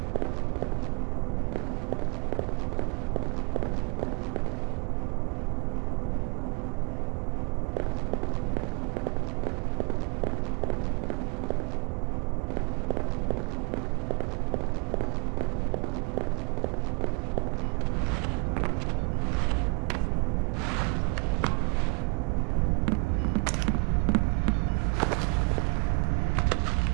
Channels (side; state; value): left; quieter; 33.0 dB